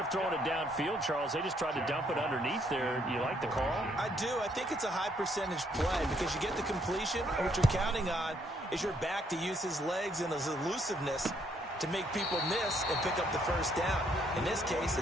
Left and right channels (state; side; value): normal; both; correlation 0.70